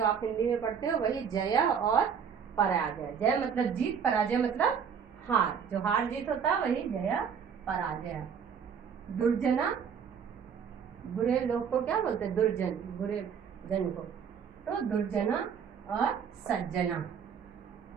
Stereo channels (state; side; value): quieter; left; 7.1 dB